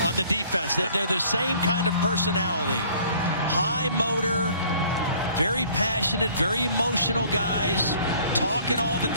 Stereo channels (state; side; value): inverted; both; correlation -0.55